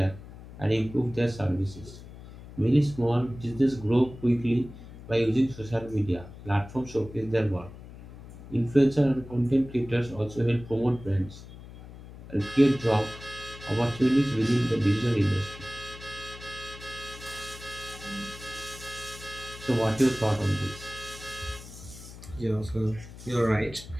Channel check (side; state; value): left; noise; hum, 16 dB below the sound